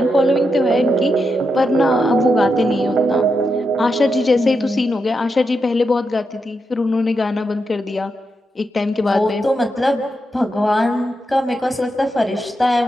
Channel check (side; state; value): both; normal; correlation 0.85